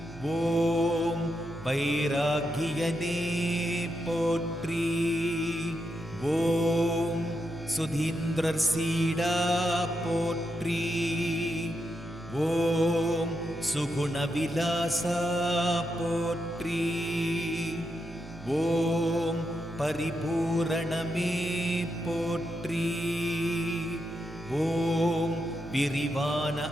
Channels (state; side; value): noise; right; hum, 17 dB below the sound